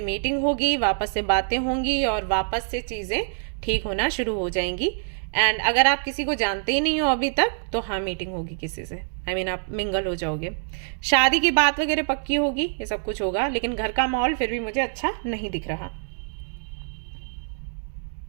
मीटिंग होगी, वापस से बातें होंगी और वापस से चीजें ठीक होना शुरू हो जाएंगी। एंड अगर आप किसी को जानते ही नहीं हो अभी तक, तो हाँ मीटिंग होगी किसी से, I mean, आप मिंगल हो जाओगे। शादी की बात वगैरह पक्की होगी, ये सब कुछ होगा, लेकिन घर का माहौल फिर भी मुझे अच्छा नहीं दिख रहा।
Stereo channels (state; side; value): silent; left; digital silence